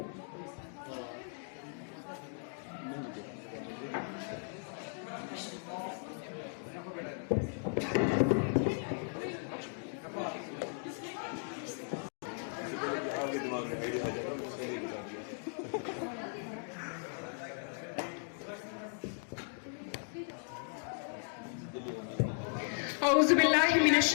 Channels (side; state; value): right; silent; 53 dB below the other